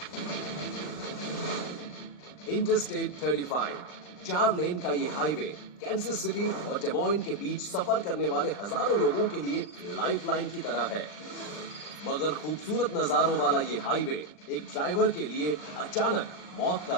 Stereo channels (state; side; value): late; right; 40 ms